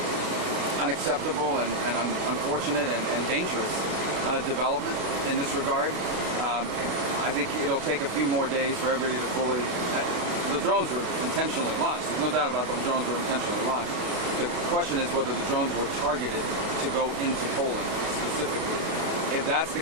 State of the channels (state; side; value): late; left; 32 ms